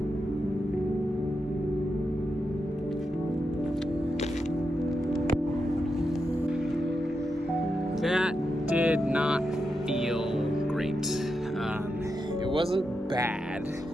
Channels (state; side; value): normal; both; correlation 0.87